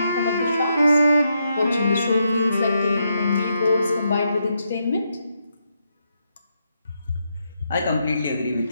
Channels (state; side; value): inverted; both; correlation -0.81